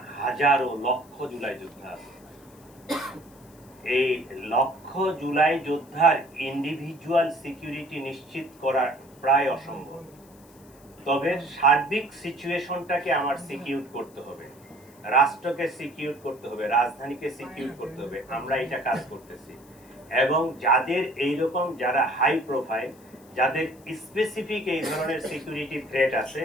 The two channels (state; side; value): noise; left; hiss, 27 dB below the sound